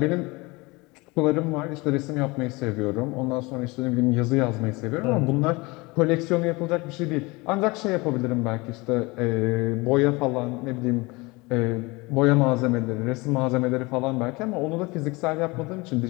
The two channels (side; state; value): right; quieter; 24.4 dB